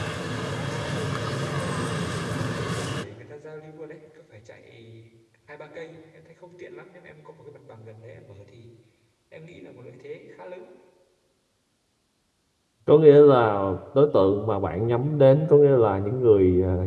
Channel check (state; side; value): identical; both; correlation 1.00